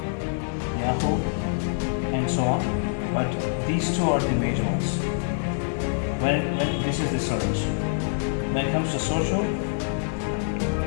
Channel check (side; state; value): right; silent; digital silence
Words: Yahoo, and so on. But these 2 are the major ones. When this is the search. When it comes to social,